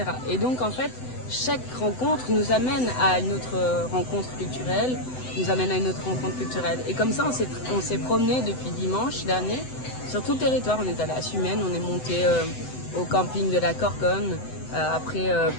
Et donc en fait, chaque rencontre nous amène à une autre rencontre culturelle, nous amène à une autre rencontre culturelle. Et comme ça, on s'est promené depuis dimanche dernier sur tout le territoire. On est allé à Sumène, on est monté au camping de la Corconne, après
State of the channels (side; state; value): right; late; 7.9 ms